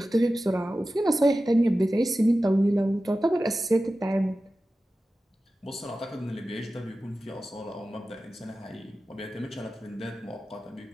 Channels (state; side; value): normal; both; correlation 0.94